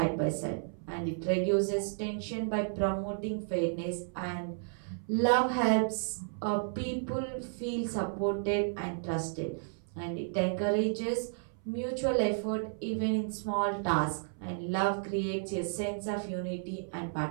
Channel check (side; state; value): left; silent; 56 dB below the other